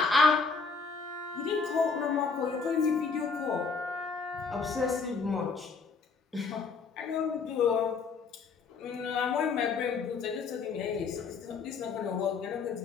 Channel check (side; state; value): right; quieter; 5.0 dB